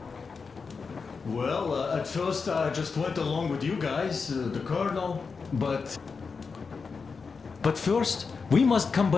Well, at first I just went along with you guys, the colonel, but first we must come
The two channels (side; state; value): right; quieter; 5.0 dB